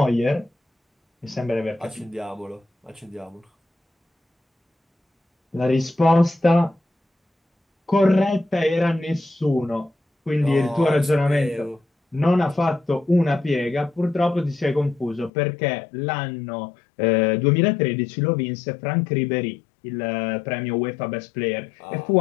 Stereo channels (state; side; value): drops out; right; at 15.3 s